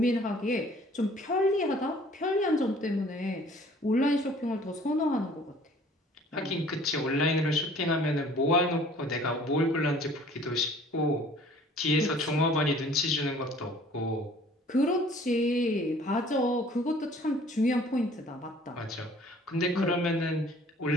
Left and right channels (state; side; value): normal; both; correlation 0.53